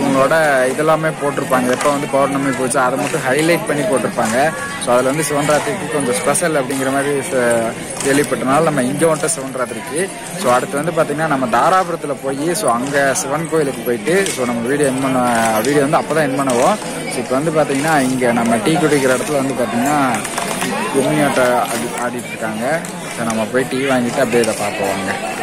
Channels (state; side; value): identical; both; correlation 1.00